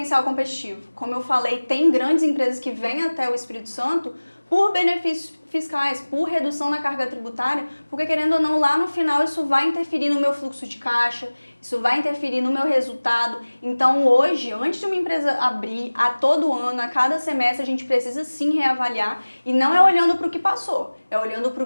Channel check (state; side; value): inverted; both; correlation -1.00